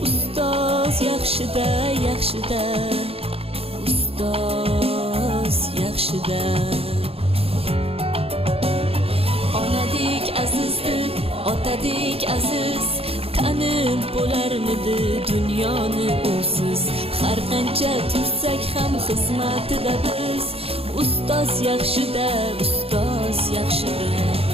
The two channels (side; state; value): left; late; 0.28 ms